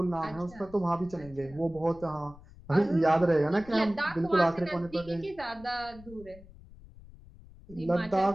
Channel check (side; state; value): left; noise; rumble, 20 dB below the sound